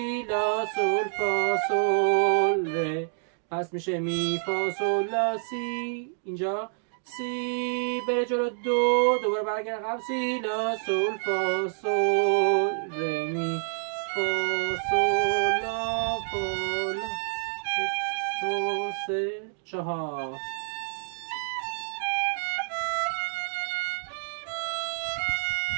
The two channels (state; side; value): silent; left; digital silence